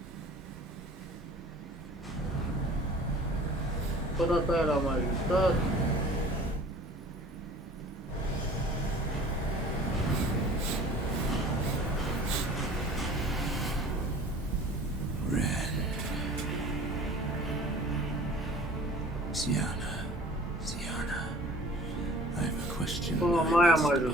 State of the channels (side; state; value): both; normal; correlation 0.47